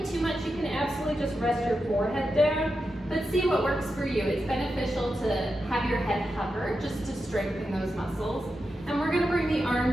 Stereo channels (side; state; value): both; normal; correlation 0.89